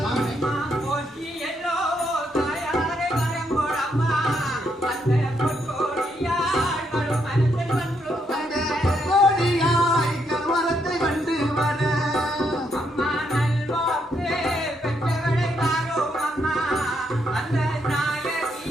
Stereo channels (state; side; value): normal; both; correlation 0.76